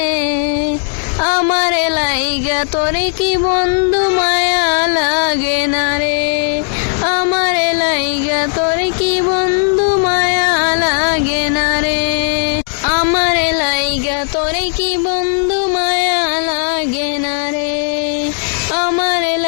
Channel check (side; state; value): right; silent; 56 dB below the other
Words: আমারে লাইগা তোরে কি বন্ধু মায়া লাগে না রে, আমারে লাইগা তোরে কি বন্ধু মায়া লাগে না রে, আমারে লাইগা তোরে কি বন্ধু মায়া লাগে না রে, আমারে